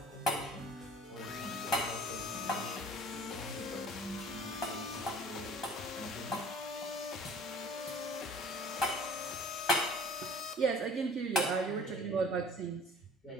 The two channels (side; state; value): both; normal; correlation 0.48